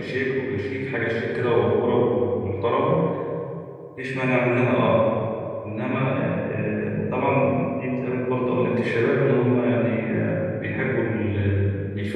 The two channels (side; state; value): both; identical; correlation 1.00